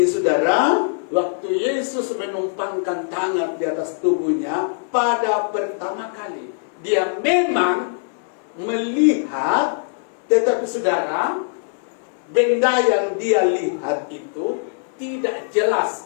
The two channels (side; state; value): right; silent; digital silence